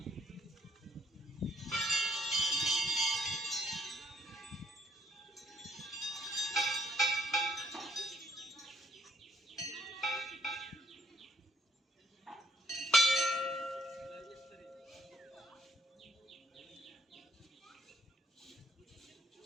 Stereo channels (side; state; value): both; normal; correlation 0.66